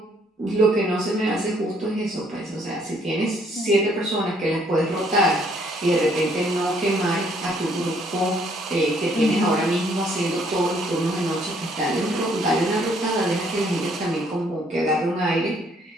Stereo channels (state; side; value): normal; both; correlation 0.66